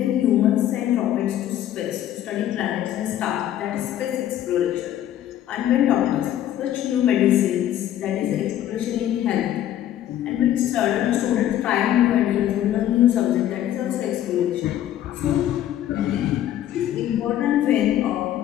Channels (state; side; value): quieter; right; 11.9 dB